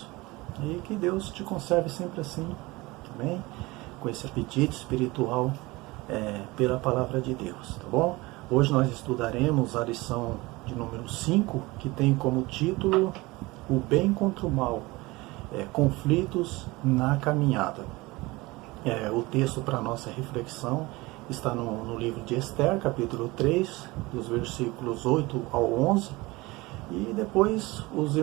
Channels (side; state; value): left; quieter; 22.1 dB